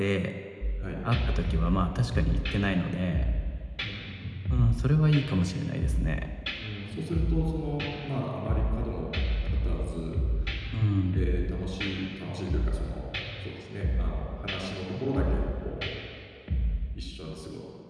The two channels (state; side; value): identical; both; correlation 1.00